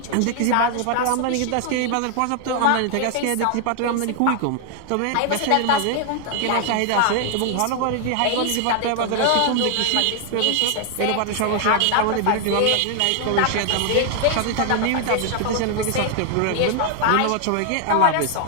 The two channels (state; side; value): different; both; correlation 0.00